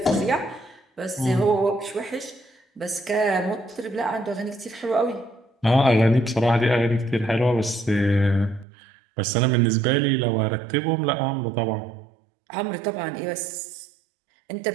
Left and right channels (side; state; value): left; drops out; at 8.7 s